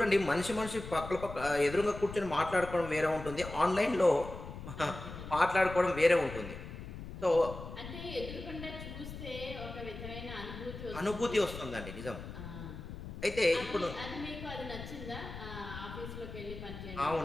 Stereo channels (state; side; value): noise; left; rumble, 10 dB below the sound